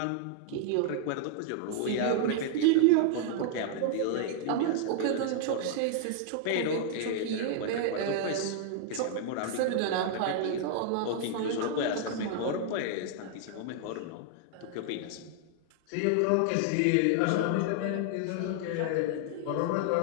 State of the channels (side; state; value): both; different; correlation -0.01